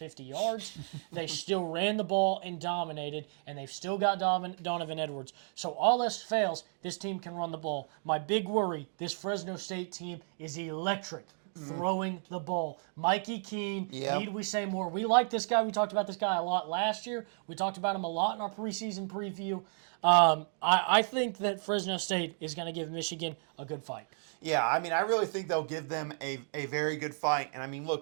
yards, they still ran the ball and dominated, and they've still got Donovan Edwards. So all else fails, this team can run the ball. My big worry, this Fresno State team is electric. Throwing the ball. Mikey Keene, need we say more? We like this guy. We talked about this guy a lot last year. We talked about him a lot in our preseason preview. I think that Fresno State is going to give Michigan a good fight. Yeah, I mean, I really think they'll give them a very good fight. And I mean,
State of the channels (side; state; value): left; silent; 56 dB below the other